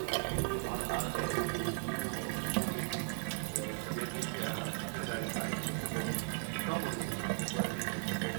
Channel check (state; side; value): silent; left; 53 dB below the other